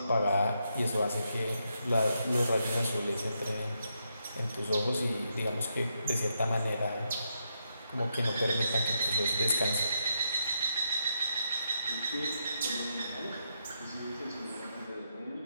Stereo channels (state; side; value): inverted; both; correlation -0.81